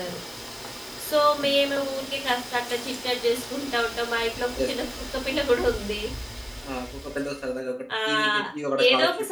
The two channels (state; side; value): identical; both; correlation 1.00